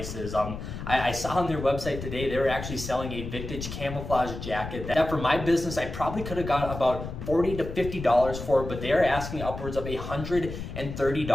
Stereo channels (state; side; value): noise; left; rumble, 8 dB below the sound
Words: I saw on their website today, they were actually selling a vintage camouflage jacket that for my business, I probably could have got about $40 to $50 for, but they are asking upwards of